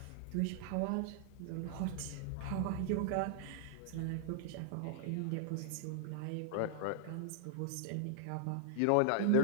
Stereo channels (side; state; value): both; different; correlation -0.01